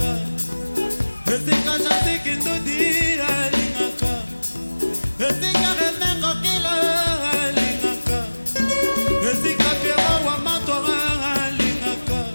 esika jantiki ndudi alingaka esika rene kokila alingaka esika piero wa matora alingaka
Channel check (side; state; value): both; inverted; correlation -1.00